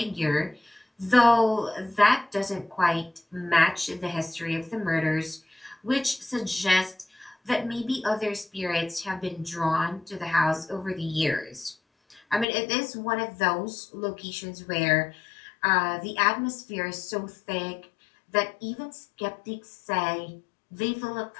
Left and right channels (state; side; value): drops out; right; at 12.5 s